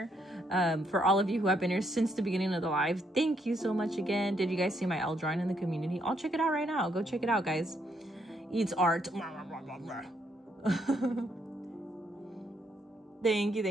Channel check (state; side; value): normal; both; correlation 0.74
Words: For all of you who have been here since the beginning of the live, thank you so much again. Did you guys see my L drawing in the community? I'll check it out right now. Go check it out, guys. Eats art. Thank